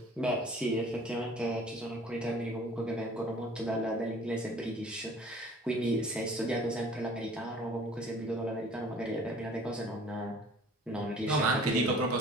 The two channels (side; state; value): both; normal; correlation 0.50